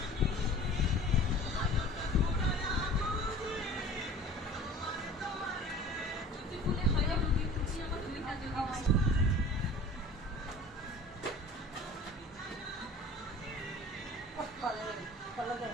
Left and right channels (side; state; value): both; normal; correlation 0.43